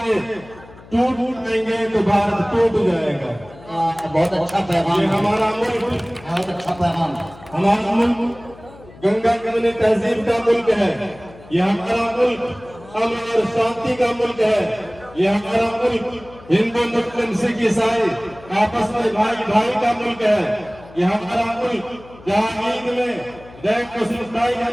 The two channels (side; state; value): left; noise; hum, 21 dB below the sound